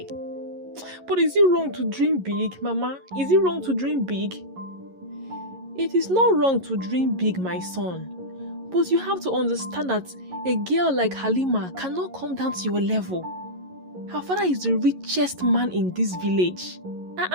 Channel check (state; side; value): late; left; 11 ms